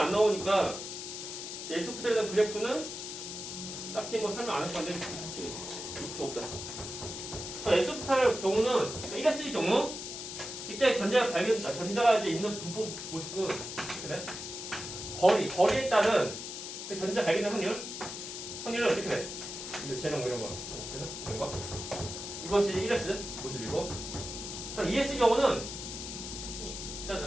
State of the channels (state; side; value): noise; left; hiss, 8 dB below the sound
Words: 나오니까 S 오비탈에 대한 그래프는 딱히 뭐 설명 안 할 건데 책이 없다. S 오비탈의 경우는 1S의 경우 이때 전자가 이제 있는 분포 모습은 그래? 거리에 따른 그 전자 발견된 확률은 어떻게 돼? 재능 뭐 이런 거, 이런 거. 이것이 1S 모습이고, 2S 경우는